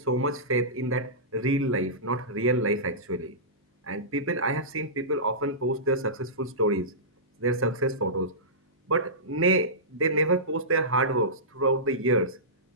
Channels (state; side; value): normal; both; correlation -0.18